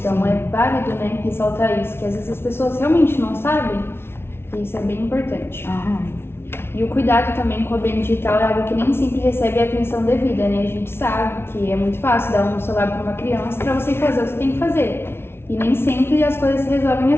é válido, ressaltar isso, que às vezes as pessoas realmente não sabem, e isso é bem importante. E o cuidado também com o ambiente digital é algo que nem sempre recebe a atenção devida, A gente sabe que é muito fácil dar um celular para uma criança para você fazer o que você tem que fazer. E nem sempre as coisas se resolvem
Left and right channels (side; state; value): right; late; 0.12 ms